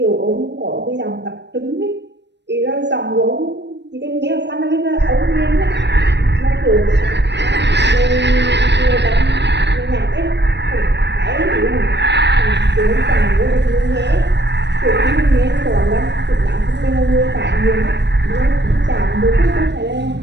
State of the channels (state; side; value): late; left; 0.51 ms